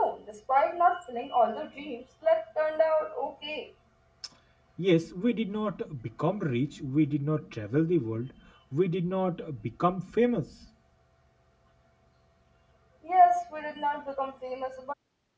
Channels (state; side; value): identical; both; correlation 1.00